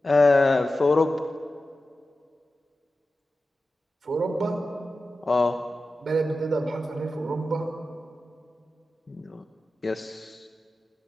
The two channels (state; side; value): normal; both; correlation 0.94